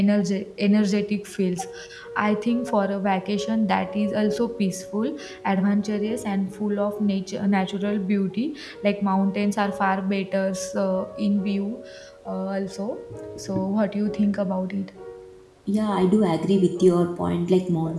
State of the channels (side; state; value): both; identical; correlation 1.00